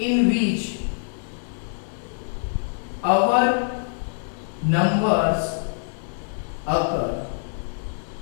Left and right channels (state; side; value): silent; right; 62 dB below the other